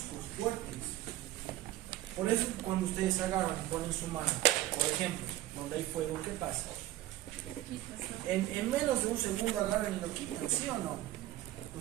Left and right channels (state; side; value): quieter; left; 15.0 dB